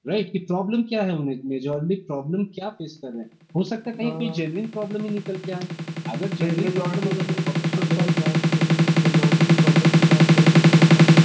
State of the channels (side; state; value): both; identical; correlation 1.00